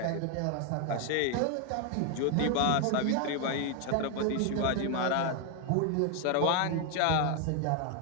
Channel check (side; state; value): both; different; correlation 0.00